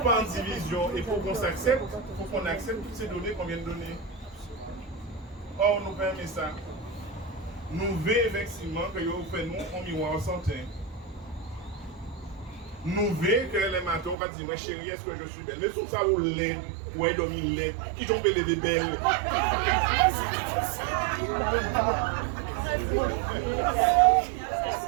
en division et pour qu'on s'accepte, il faut qu'on accepte toutes ces données qu'on vient de donner. Or, nous permet ça. Nous voyons effectivement que vous faites nous en miroir santé. Nous voyons que les matins vont dire, chérie, est-ce que je suis belle? Mais tout ça, vous l'êtes, ou est dormi l'êtes, qui tombent les belles.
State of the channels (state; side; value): drops out; left; at 14.2 s